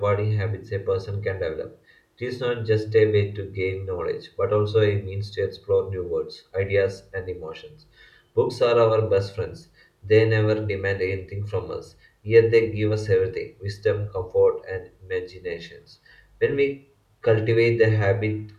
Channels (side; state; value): both; identical; correlation 1.00